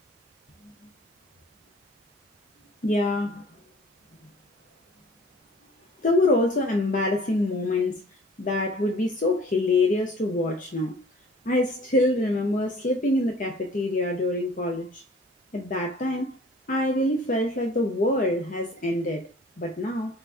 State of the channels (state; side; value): normal; both; correlation 0.50